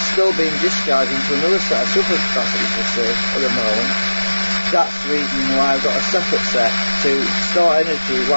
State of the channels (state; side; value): inverted; both; correlation -1.00